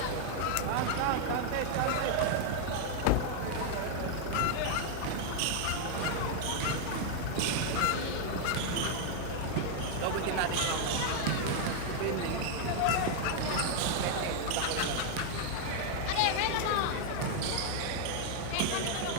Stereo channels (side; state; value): both; different; correlation 0.00